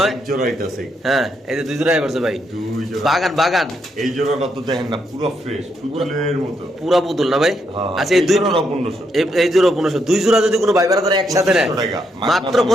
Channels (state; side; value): normal; both; correlation 0.78